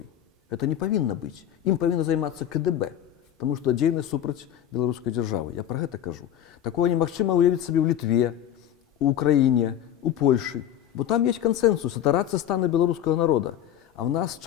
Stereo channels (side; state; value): right; quieter; 10.8 dB